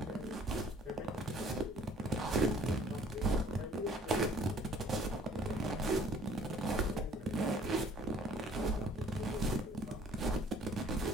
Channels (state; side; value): normal; both; correlation 0.55